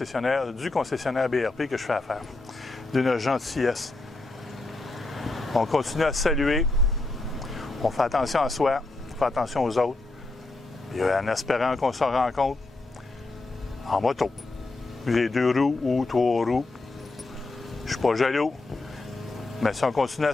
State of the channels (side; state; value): right; quieter; 3.1 dB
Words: BRP que je fais affaire. D'une gentillesse. On continue à saluer, on fait attention à soi, on fait attention aux autres, et en espérant qu'on se rencontre en moto. Les 2 roues ou 3 roues. Je ne suis pas jaloux, mais si on continue